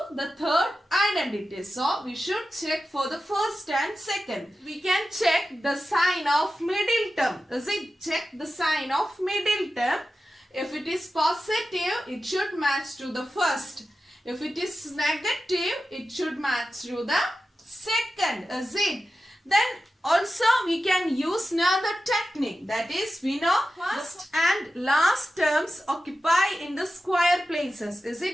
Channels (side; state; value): both; normal; correlation 0.93